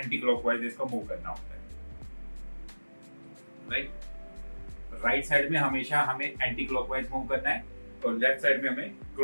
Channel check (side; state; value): both; inverted; correlation -1.00